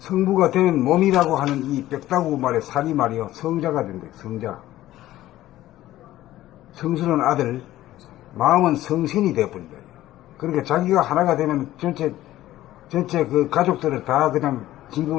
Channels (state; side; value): quieter; right; 14.8 dB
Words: 되면 몸이라고 하는 이 뼈다구 말의 살이 말이요, 성자가 된대, 성자. 성신은 아들, 마음은 성신이 되어버린다. 그러니까 자기가 하나가 되면 전체 그 가족들을 다 그냥